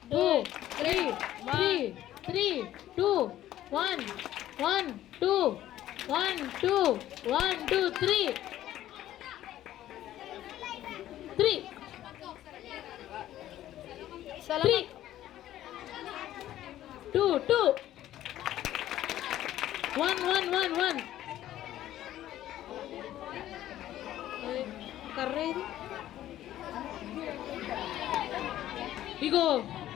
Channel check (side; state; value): right; quieter; 13.1 dB